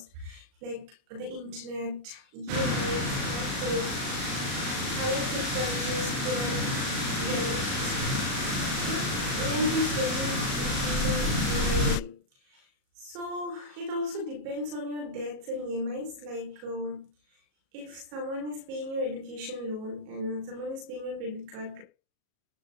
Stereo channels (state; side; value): late; left; 37 ms